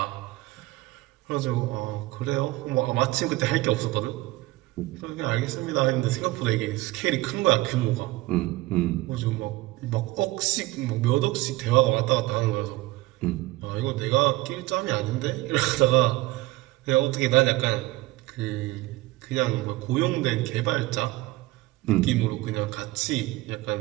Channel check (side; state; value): left; quieter; 19.4 dB